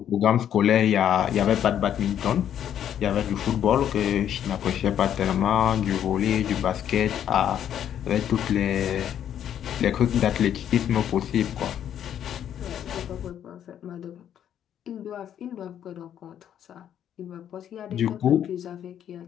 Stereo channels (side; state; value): right; quieter; 9.9 dB